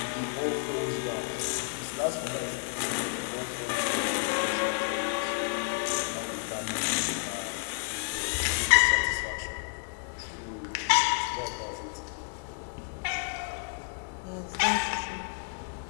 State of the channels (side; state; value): right; silent; 57 dB below the other